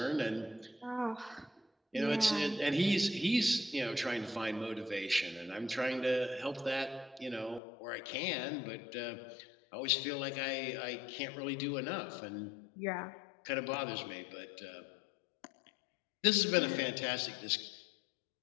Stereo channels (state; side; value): drops out; right; at 7.6 s